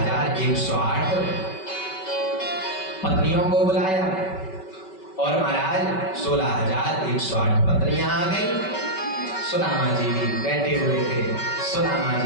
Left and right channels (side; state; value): right; late; 5.2 ms